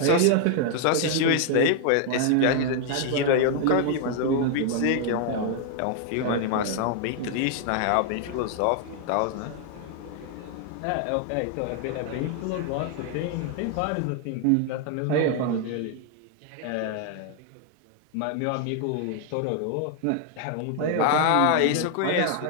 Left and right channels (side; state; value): both; different; correlation 0.00